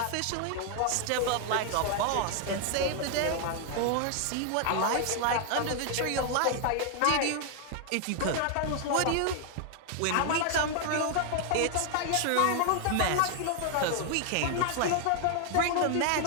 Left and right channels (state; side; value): different; both; correlation 0.00